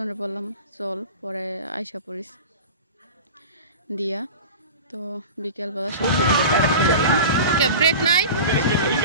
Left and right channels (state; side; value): inverted; both; correlation -0.33